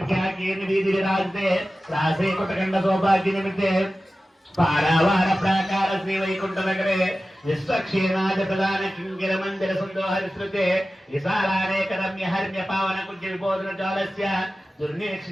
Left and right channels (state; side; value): normal; both; correlation 0.95